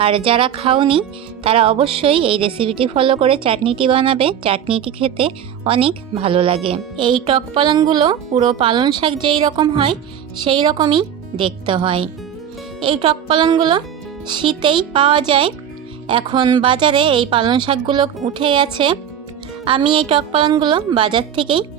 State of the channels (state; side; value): quieter; left; 9.2 dB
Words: আর যারা খাওনি তারা অবশ্যই এই রেসিপিটি ফলো করে চাটনিটি বানাবে। চাটনিটি খেতে অনেক ভালো লাগে। এই টক পালনগুলো পুরো পালন শাক যেই রকম হয় সেই রকমই দেখতে হয়। এই টক পালনগুলো শীতেই পাওয়া যায়। এখন বাজারে এই পালন শাকগুলো উঠে গেছে। আমি এই টক পালনগুলো বাজার থেকেই